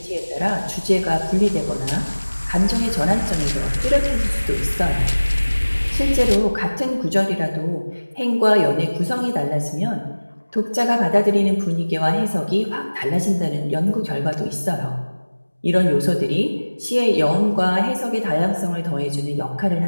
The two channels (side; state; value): both; inverted; correlation -1.00